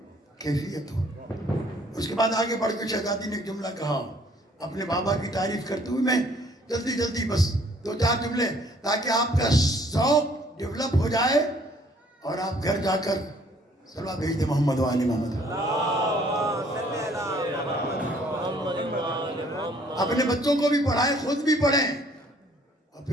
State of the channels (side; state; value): both; normal; correlation 0.60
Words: کیفیتو. اس کے بعد آگے بڑھ کے شہزادی نے ایک جملہ کہا اپنے بابا کی تعریف کرتے ہوئے. میں جلدی بس دو چار جملے تاکہ آپ کا ذوق ڈیولپ ہو جائے اور آپ گھر جا کر صلوات بھیج دیں محمد و آل محمد. اپنے بچوں کو بھی پڑھائیں، خود بھی پڑھیں، اور